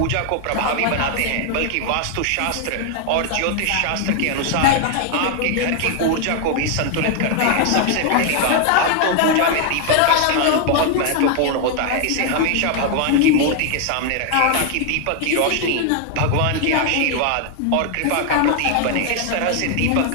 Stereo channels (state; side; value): different; both; correlation 0.00